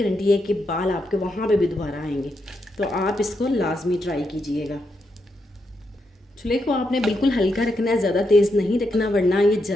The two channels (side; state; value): both; normal; correlation 0.82